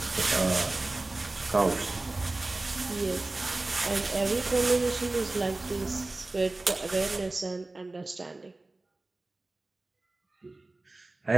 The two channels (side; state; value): left; quieter; 3.0 dB